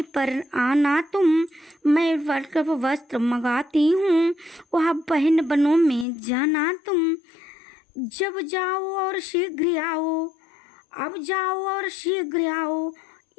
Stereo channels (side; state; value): right; drops out; at 6.1 s